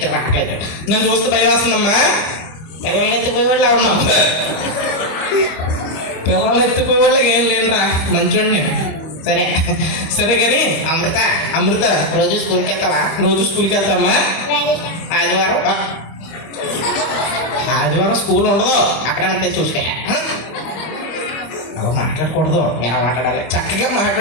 రావట్లేదు. నన్ను చూస్తే భయం వేస్తుందమ్మా. పిల్లల్ని ఎత్తిపోయి వాళ్ళు ఉన్నాం. పిల్లలు ఎత్తిపోయే వాళ్ళకి ఏం లేదురా, మంచోడిని. సరే సరే కానీ అమృత, అమృత రోజు స్కూల్కి వెళ్తావా? రోజు స్కూల్కి వెళ్తామ్మా. ఆదివారం ఆదివారం స్కూల్ ఉండదు, అక్కడ ఉంటే చూసుకో. అలా మాట్లాడకూడదు, ఎలా మాట్లాడాలి? చక్కగా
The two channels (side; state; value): right; late; 25 ms